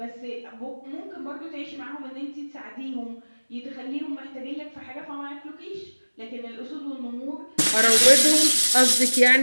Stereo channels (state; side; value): inverted; both; correlation -1.00